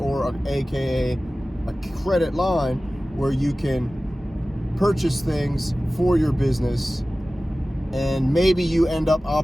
aka a credit line, where you can purchase things for your business, and maybe you end up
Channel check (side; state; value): both; normal; correlation 0.96